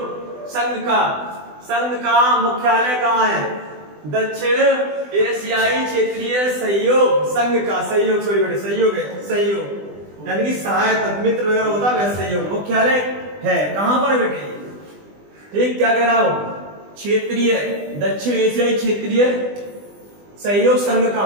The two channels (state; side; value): late; left; 20 ms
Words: संघ का मुख्यालय कहाँ है? दक्षिण एशियाई क्षेत्रीय सहयोग संघ का, सहयोग सॉरी बेटे, सहयोग है, सहयोग यानी कि सहायता मित्र वगैरह होता है, वैसे सहयोग मुख्यालय है कहां पर बेटे? ठीक, क्या कह रहा हूं? क्षेत्रीय, दक्षिण एशियाई क्षेत्रीय सहयोग संघ का